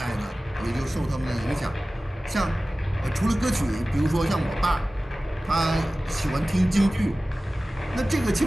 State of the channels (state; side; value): normal; both; correlation 0.97